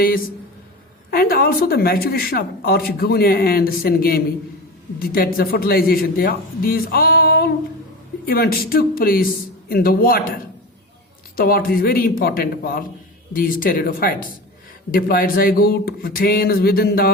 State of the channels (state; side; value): normal; both; correlation 0.28